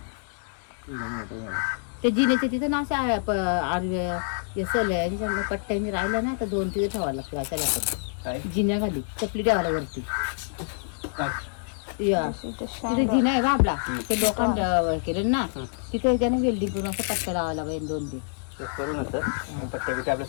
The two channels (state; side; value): silent; right; digital silence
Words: ते जिनेचे तिथं ना असं पट्ट्यांनी राहिला ना तर 2 तिथे ठेवावं लागतं. अशा जिन्या खाली चपली ठेवायला वरती. तिथे जिना आहे का आपला ते लोखंड केलं ना तिथे त्याने वेल्डिंग करून असं पट्ट्या लावायला पाहिजे 2-3.